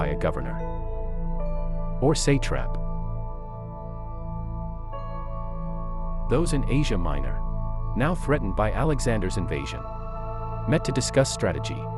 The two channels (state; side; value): identical; both; correlation 1.00